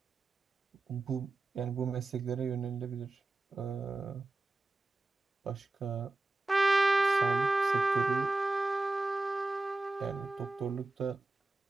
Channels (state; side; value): quieter; left; 3.1 dB